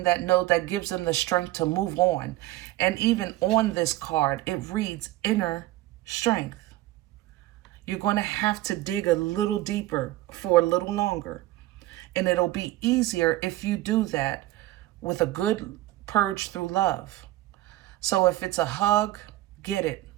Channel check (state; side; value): quieter; left; 16.5 dB